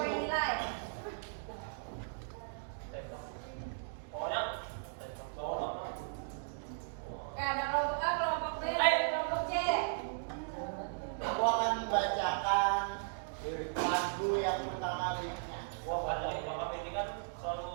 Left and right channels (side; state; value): left; silent; digital silence